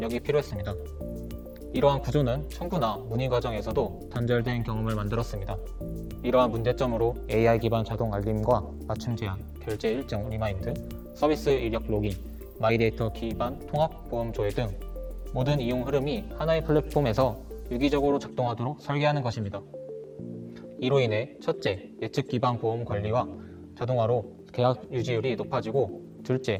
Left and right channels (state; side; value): identical; both; correlation 1.00